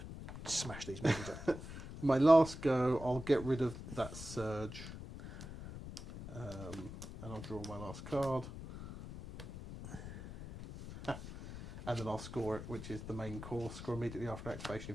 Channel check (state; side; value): noise; left; rumble, 11 dB below the sound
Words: smash these movies up. My last go, I'll get rid of that surge. And I'll draw my last card. And then I'll score it, which is the main course. Score immediately after activation